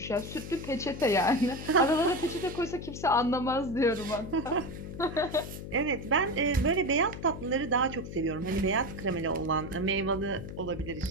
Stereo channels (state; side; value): noise; left; hum, 9 dB below the sound